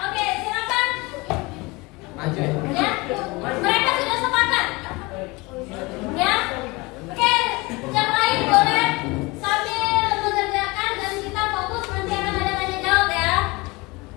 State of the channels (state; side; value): quieter; right; 24.3 dB